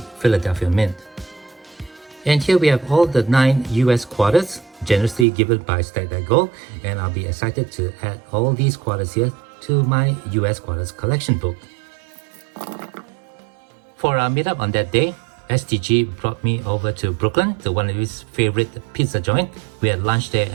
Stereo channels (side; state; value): left; drops out; at 5.2 s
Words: Philadelphia Mint. And here we have all the 9 US quarters generously given by Stack That Gold. And I'll be excited to add all these quarters here to my US quarters collection book. For our meetup on that day, STG brought me over to Brooklyn to one of his favorite pizza joint. We had lunch there